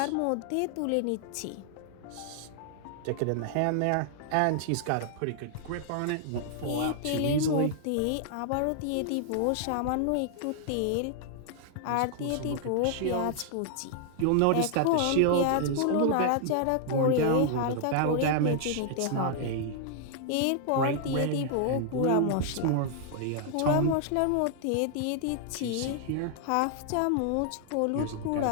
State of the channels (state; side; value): different; both; correlation 0.00